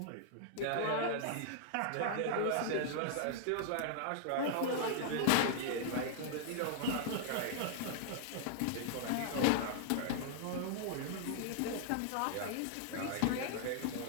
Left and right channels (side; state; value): both; different; correlation -0.01